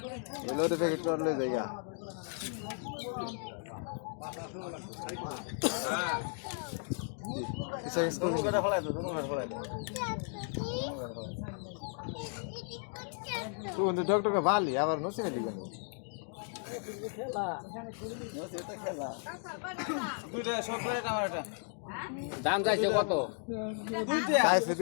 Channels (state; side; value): silent; right; 54 dB below the other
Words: এলো রে প্যাকেট করলে জায়গা কিসে কিস করবি নি তুই বন্ধু ডক্টর কা ভালি আবার নসিবে দিবেন দুইটা সব করে টমেটো দাম চাইছে কত? দুইটা চাইছে